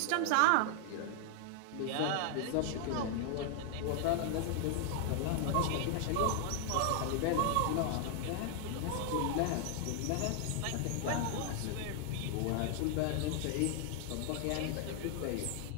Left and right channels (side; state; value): both; different; correlation 0.00